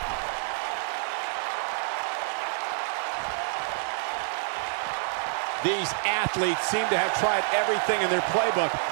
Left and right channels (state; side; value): silent; left; 60 dB below the other